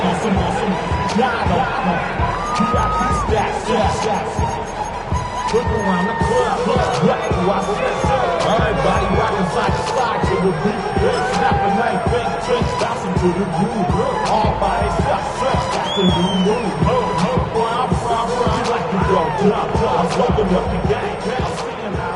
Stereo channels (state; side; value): identical; both; correlation 1.00